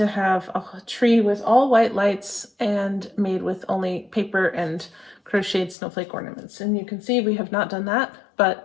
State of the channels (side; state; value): right; drops out; at 5.8 s